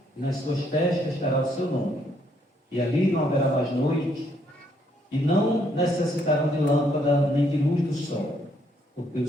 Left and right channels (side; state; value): both; normal; correlation 0.70